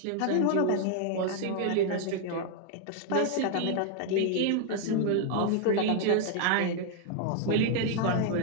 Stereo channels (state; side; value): different; both; correlation 0.00